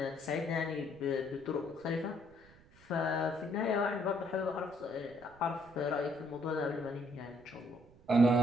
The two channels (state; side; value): noise; right; rumble, 25 dB below the sound